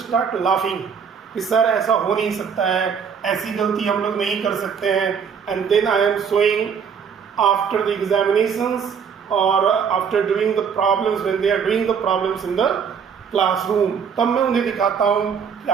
start laughing कि sir ऐसा हो नहीं सकता है, ऐसी गलती हम लोग नहीं कर सकते हैं. And then I am showing after the examinations or after doing the problems, when they are doing the problems in the classroom, तब मैं उन्हें दिखाता हूँ कि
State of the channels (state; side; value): quieter; left; 6.8 dB